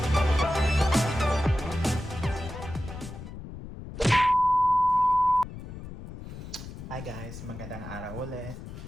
Hi guys, magandang araw ulit.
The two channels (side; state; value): left; noise; rumble, 11 dB below the sound